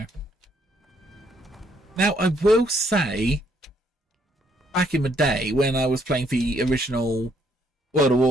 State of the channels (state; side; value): normal; both; correlation 0.69